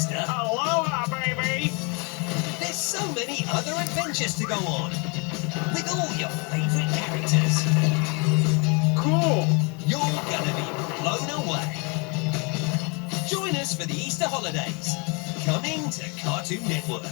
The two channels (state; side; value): quieter; right; 32.1 dB